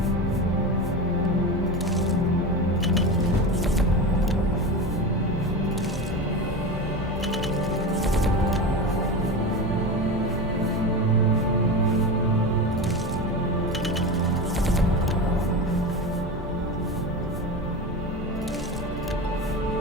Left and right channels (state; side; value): normal; both; correlation 0.24